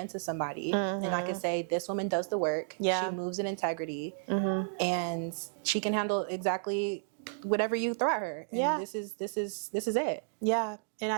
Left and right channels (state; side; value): silent; left; digital silence